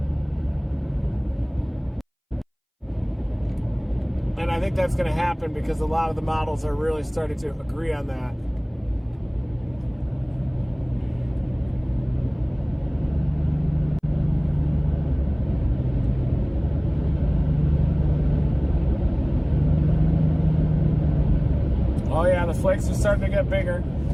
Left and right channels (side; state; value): both; identical; correlation 1.00